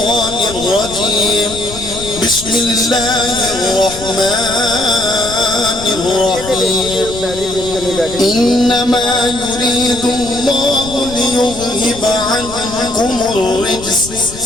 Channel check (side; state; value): left; noise; rumble, 14 dB below the sound